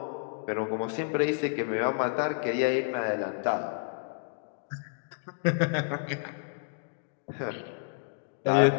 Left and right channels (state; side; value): silent; right; digital silence